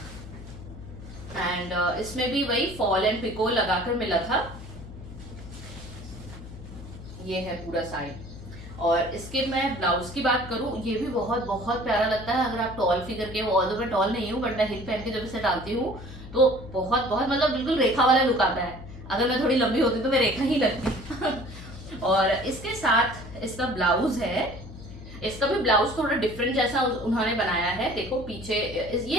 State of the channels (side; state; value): left; noise; hum, 14 dB below the sound